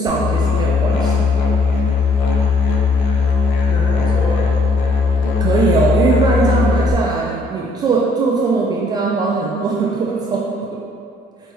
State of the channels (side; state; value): both; normal; correlation 0.65